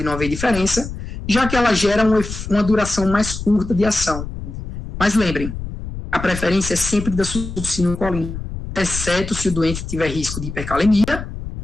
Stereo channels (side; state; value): left; noise; rumble, 8 dB below the sound